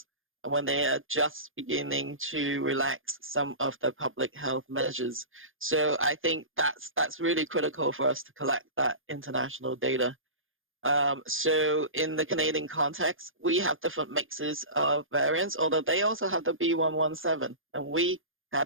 when they are just beginning to relax some of the public health measures. So I think that's really critical for us to collect that international data. So in the Canadian context, we have different mixes of variants, although they also have the B117, and we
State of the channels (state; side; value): late; left; 0.59 ms